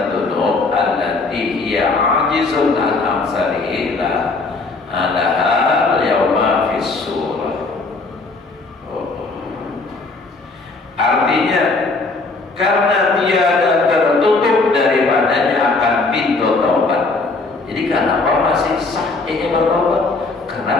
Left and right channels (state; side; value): quieter; right; 3.7 dB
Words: allati hiya 'ajizun an amsalihi laha al-yawma fi surah. Artinya karena tiada tertutup daripadanya akan pintu taubat. Jadi kenapa masih sah ini bertaubat?